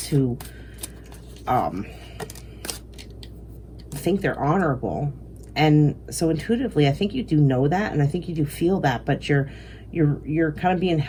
to think they're honorable. And so intuitively, I think you do know that, and I think you do feel that, but you're kind of being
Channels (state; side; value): identical; both; correlation 1.00